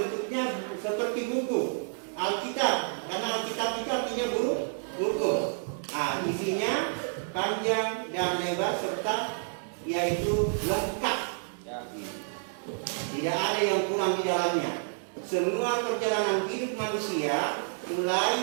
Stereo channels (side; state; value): left; silent; digital silence